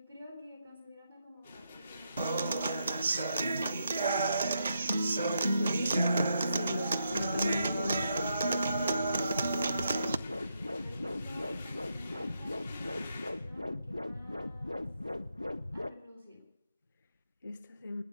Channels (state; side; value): inverted; both; correlation -0.81